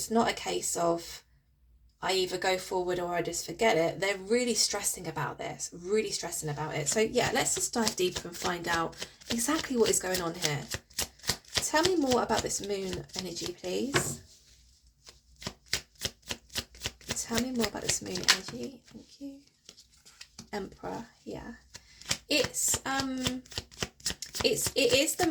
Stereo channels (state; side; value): identical; both; correlation 1.00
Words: not a case of I either go forward or I just forget it. They're really stressing about this, really stressing about it. So yeah, let's just dive deeper and find out exactly what is going on here. Tell me more about this moon energy, please. Tell me more about this moon energy. Thank you. Emperor, yeah. It is the